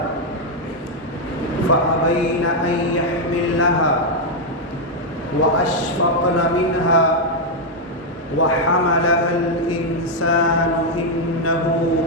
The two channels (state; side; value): normal; both; correlation 0.00